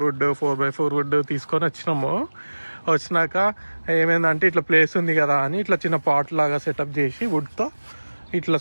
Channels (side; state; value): both; inverted; correlation -1.00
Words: వుడ్ 4x4 వుడ్ తీసుకొని వచ్చినాక ఏమైందంటే ఇట్లా ప్లేస్ ఉంది కదా అని ఇట్లా చిన్న పాట్ లాగా సెటప్ చేసి వుడ్తో ఇట్లా